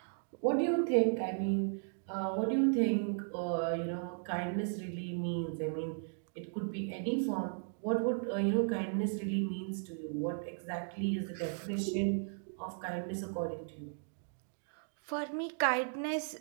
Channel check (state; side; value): silent; left; digital silence